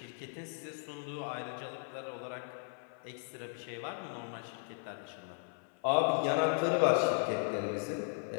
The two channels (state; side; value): silent; right; 53 dB below the other